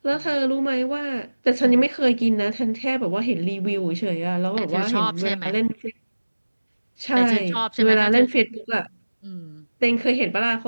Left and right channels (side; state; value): both; inverted; correlation -1.00